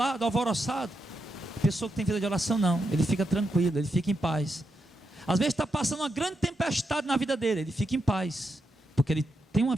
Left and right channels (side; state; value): both; normal; correlation 0.84